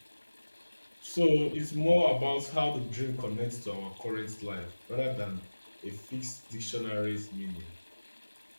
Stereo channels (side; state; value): both; inverted; correlation -1.00